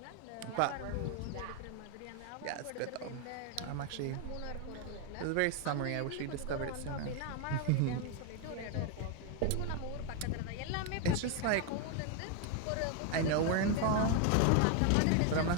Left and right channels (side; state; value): both; different; correlation 0.01